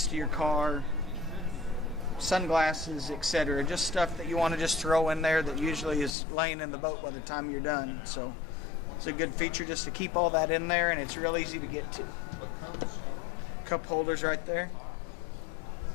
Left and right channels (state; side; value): drops out; right; at 6.2 s